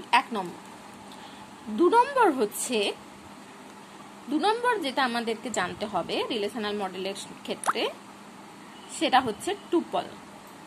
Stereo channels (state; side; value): identical; both; correlation 1.00